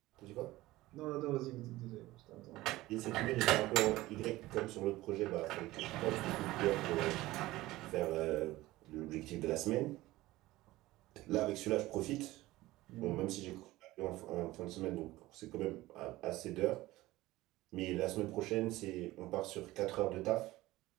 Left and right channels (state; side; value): quieter; left; 17.9 dB